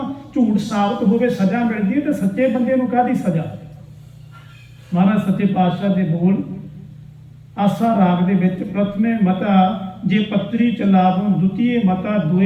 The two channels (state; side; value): identical; both; correlation 1.00